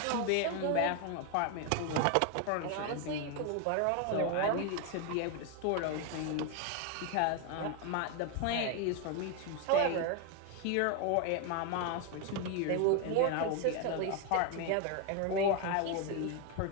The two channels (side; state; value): both; different; correlation 0.01